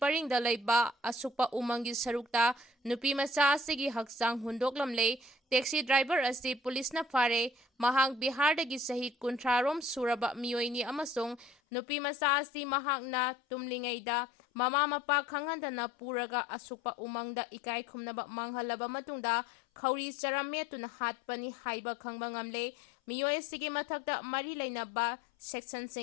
leiba asukpa umangi sarukta nupi macha asigi haksang hundoklamle taxi driver asi police na fare mahang Bihar dagi sahi kuntrarom suraba miyoini amasung nupi macha asi mahakna tumlingaida mama mapa khangandana puraga asukpa umangda ikai khumnaba manghalaba matungda khauri charametuna hatpani haiba khangba ngamle miyoi sigi mathakta mari leinaba section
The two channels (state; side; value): drops out; right; at 11.6 s